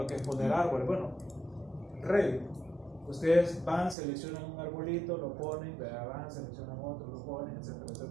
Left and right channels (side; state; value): left; drops out; at 4.0 s